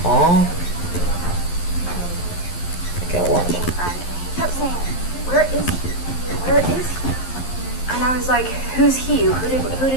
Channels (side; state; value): right; late; 11 ms